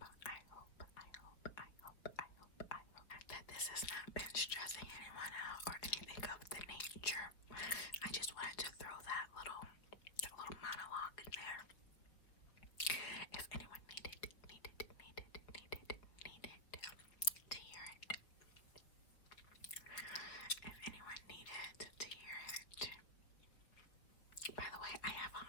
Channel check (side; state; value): right; late; 4.6 ms